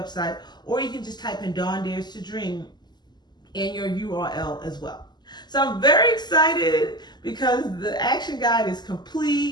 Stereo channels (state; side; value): late; right; 0.21 ms